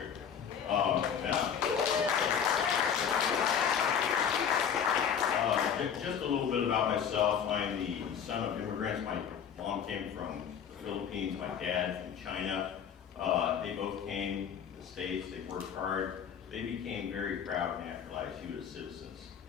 Just a little bit about myself. I'm the son of immigrants. My mom came from the Philippines, my dad from China. They both came to the States, they worked hard. They became very proud naturalized U.S. citizens.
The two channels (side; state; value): right; quieter; 7.9 dB